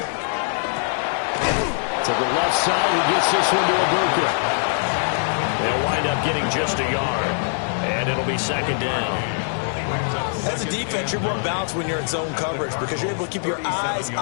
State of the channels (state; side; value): silent; right; 62 dB below the other